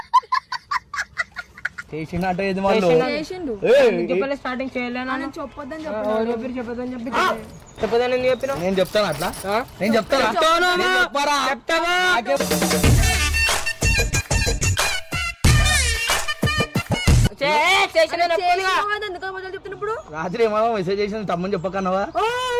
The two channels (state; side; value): identical; both; correlation 1.00